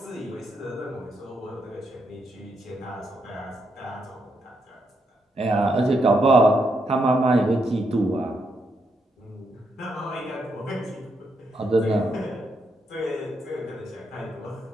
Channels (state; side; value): normal; both; correlation 0.79